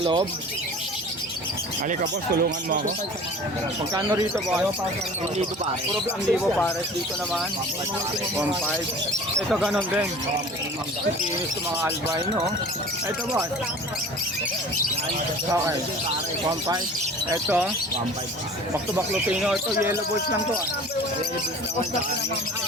loob. Halika boss, tulungan mo ako. Magkano rito boss? Hindi ko pare. Puro ang libo pares. Dito naman. 1.5. Ito ganon din. Ang kikinis ng mga albino. oh. Ito boss. Okay. 1.5. Ito. 1.5. Back to back Lutino. Ito yellow balls lang to.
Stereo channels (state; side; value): normal; both; correlation 0.42